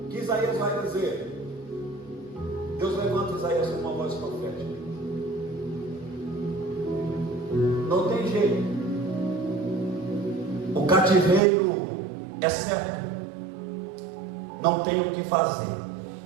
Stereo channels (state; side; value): drops out; left; at 11.4 s